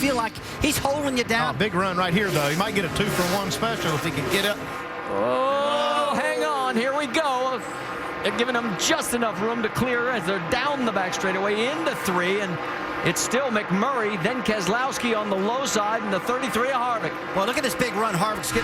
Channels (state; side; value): identical; both; correlation 1.00